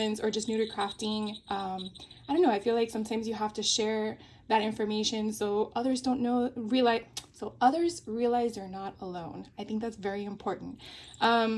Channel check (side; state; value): both; identical; correlation 1.00